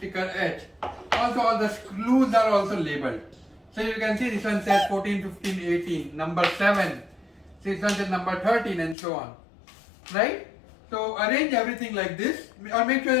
H. Also, all the screws are also labeled. So you can see this one says 14, 15, 18, number 7. This one says number 13, and so on. Right? So arrange everything like this, or make sure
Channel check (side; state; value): right; drops out; at 9.0 s